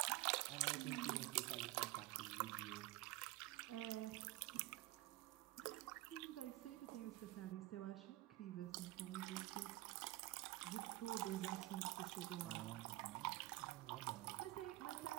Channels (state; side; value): quieter; left; 18.4 dB